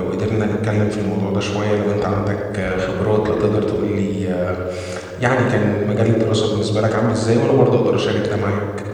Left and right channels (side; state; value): both; identical; correlation 1.00